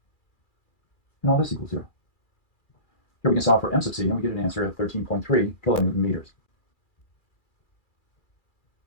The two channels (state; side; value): late; right; 2.4 ms